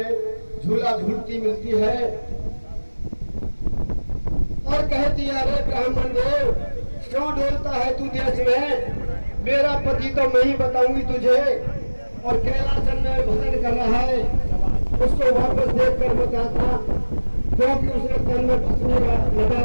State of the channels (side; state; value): both; inverted; correlation -1.00